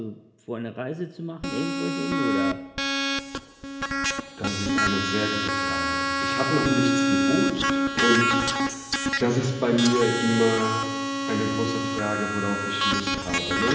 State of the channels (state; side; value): identical; both; correlation 1.00